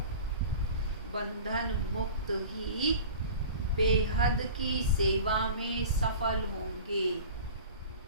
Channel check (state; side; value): inverted; both; correlation -0.39